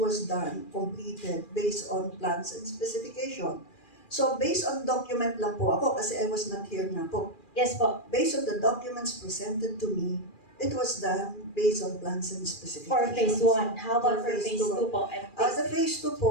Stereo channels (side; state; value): right; late; 2.4 ms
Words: done, completed, based on plans and specification. So, based on document lang po ako, kasi I was not here na po. Yes po. Based on the documents presented to me, it was done based on plans and specifications. For phase 1. How about for phase 2 po? The phase 2